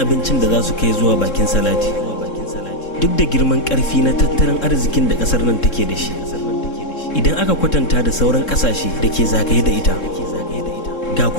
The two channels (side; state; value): right; late; 3.6 ms